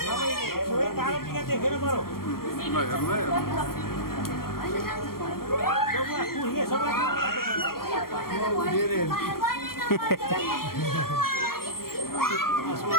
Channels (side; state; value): right; late; 0.93 ms